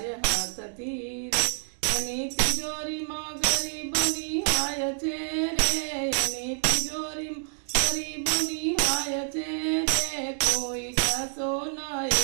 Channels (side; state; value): left; silent; digital silence